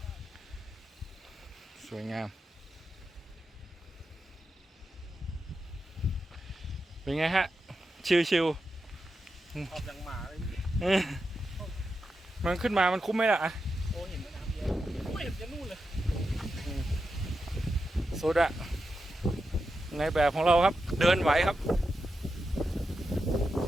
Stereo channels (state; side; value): normal; both; correlation 0.88